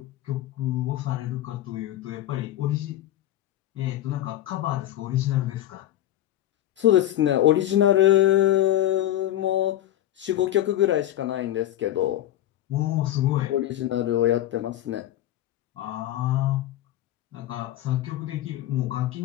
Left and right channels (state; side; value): quieter; right; 13.1 dB